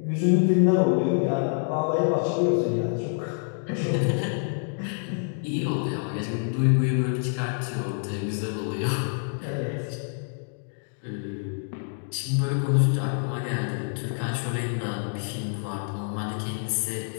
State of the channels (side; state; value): right; silent; digital silence